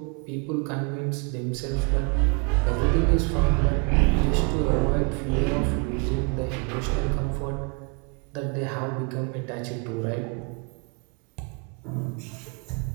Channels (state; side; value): quieter; left; 33.1 dB